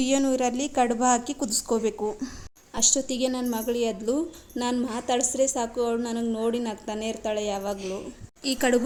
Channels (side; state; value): both; identical; correlation 1.00